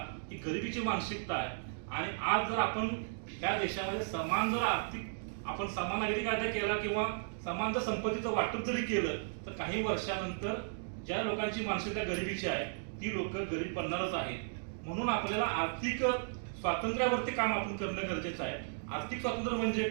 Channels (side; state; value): left; silent; digital silence